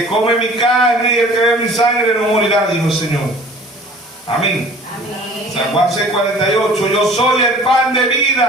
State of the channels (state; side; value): normal; both; correlation 0.48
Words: come mi carne y el que bebe mi sangre no morirá, dijo el Señor. Amén. San Juan 6:48, yo soy el pan de